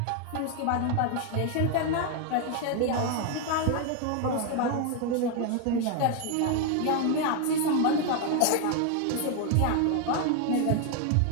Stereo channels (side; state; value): both; different; correlation 0.01